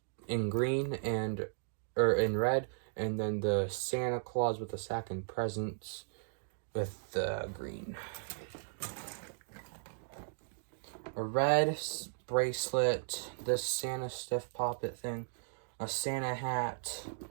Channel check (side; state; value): left; silent; digital silence